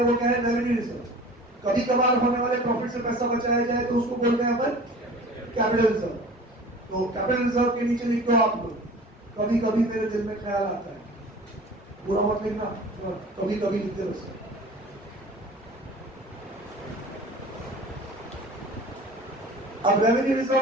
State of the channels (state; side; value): normal; both; correlation 0.42